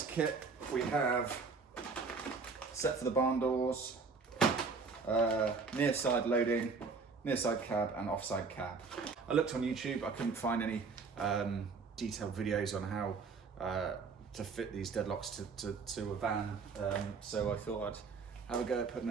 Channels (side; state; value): left; quieter; 4.7 dB